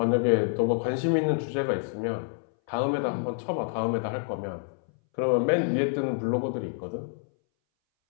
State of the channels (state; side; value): silent; right; 60 dB below the other